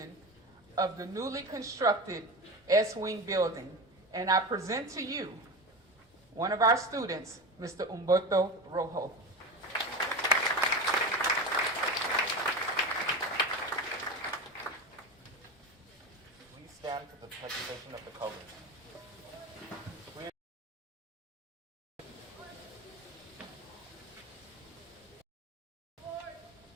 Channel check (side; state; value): both; normal; correlation 0.25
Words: of the newly constructed S-Wing building, and I present to you one of our students, Mr. Humberto Rojo. Please stand for the presentation of the colors.